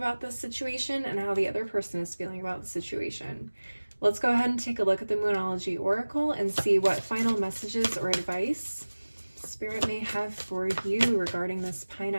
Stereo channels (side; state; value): both; inverted; correlation -1.00